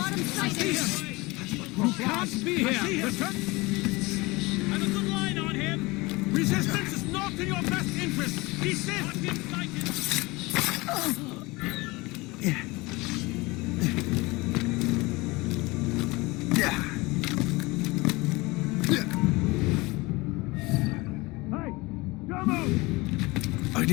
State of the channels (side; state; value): right; quieter; 23.1 dB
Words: him sighted. That's what Crow flies. Can't be here! Return! I've a good line on him! Resistance is not in your best interest! Desist! Got him sighted! I